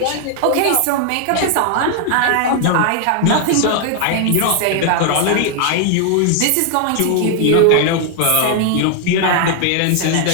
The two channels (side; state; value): both; different; correlation 0.00